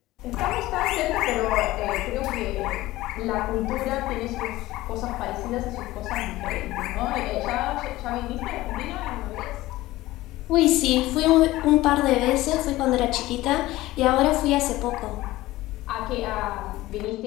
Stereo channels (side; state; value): right; quieter; 17.4 dB